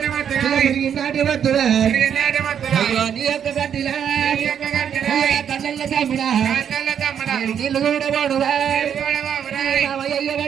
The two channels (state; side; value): quieter; left; 8.5 dB